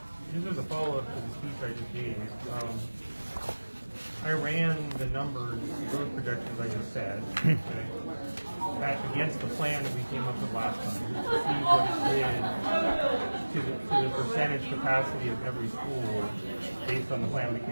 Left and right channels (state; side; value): inverted; both; correlation -1.00